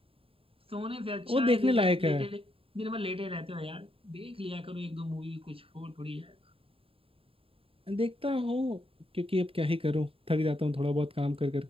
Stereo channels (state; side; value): late; left; 0.27 ms